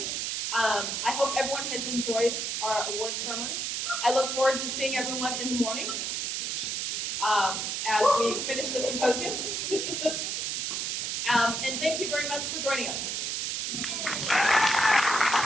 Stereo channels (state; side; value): noise; right; hiss, 1 dB below the sound